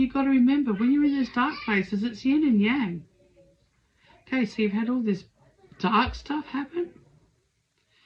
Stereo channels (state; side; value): identical; both; correlation 1.00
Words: got to remember, when you're in those dark places, it's yin and yang. Okay, so you've had all this dark stuff happen.